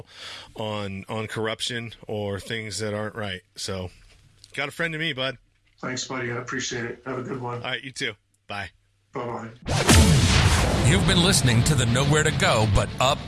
on corruption or things that aren't right. So, got a friend to me, bud. Thanks, buddy. I appreciate it. Have a good one. All right, you too. Bye. Bye-bye. You've been listening to the Nowhere to Go But Up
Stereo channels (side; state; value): both; identical; correlation 1.00